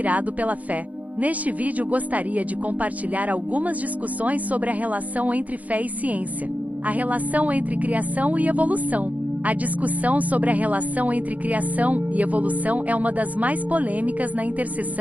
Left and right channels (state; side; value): late; left; 0.073 ms